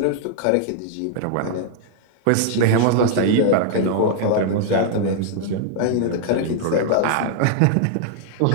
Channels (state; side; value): different; both; correlation 0.00